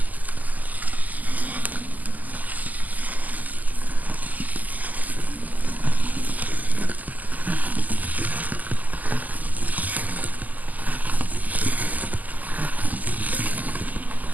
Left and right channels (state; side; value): late; left; 0.081 ms